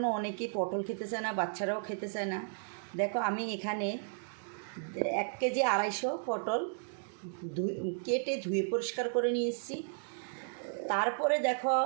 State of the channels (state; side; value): silent; left; digital silence